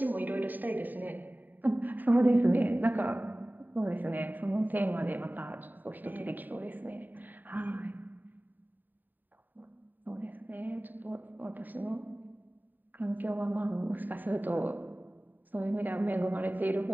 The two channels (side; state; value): left; late; 0.088 ms